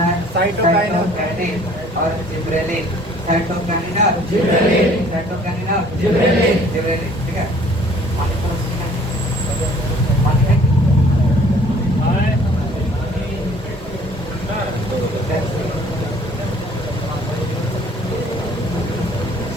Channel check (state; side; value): normal; both; correlation 0.55